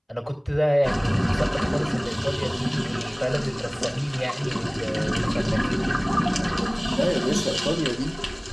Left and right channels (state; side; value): identical; both; correlation 1.00